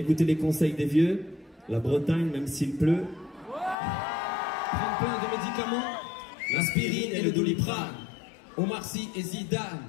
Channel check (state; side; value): drops out; right; at 3.8 s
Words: les conseils des vieux. La Bretagne, même s'il pleut. Prendre plein de médicaments, l'aspirine et le Doliprane. Omar Sy et